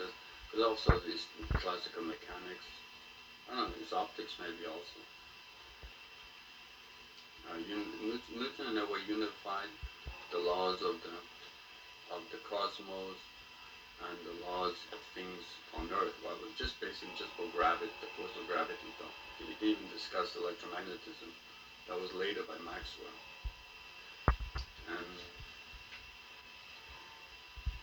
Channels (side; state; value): both; identical; correlation 1.00